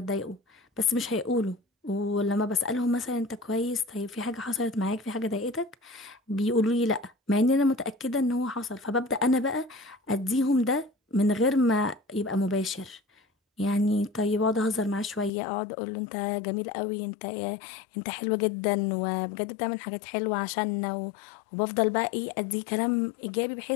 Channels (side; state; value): right; drops out; at 15.3 s